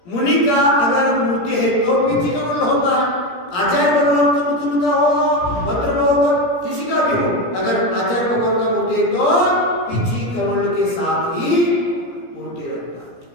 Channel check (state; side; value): late; right; 17 ms